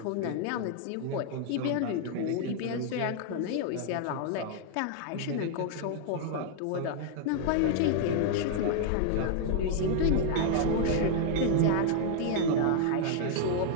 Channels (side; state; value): both; different; correlation 0.00